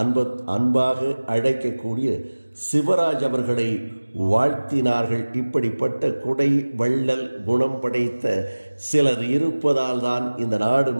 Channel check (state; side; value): inverted; both; correlation -1.00